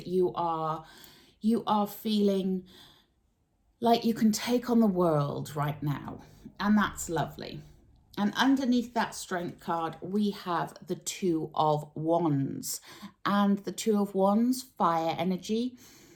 you are feeling like you can take on the world right now, and that's lovely. And underneath that strength card, we have the Two of Wands. And the Two of Wands, fire energy.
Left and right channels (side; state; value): both; identical; correlation 1.00